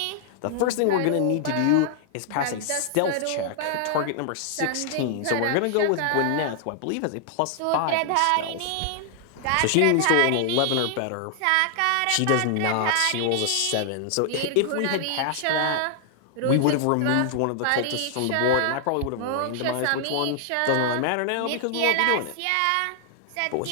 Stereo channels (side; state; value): both; different; correlation 0.00